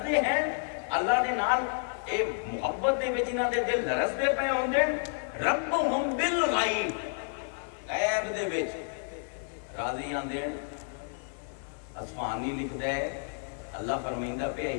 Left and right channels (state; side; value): silent; right; 58 dB below the other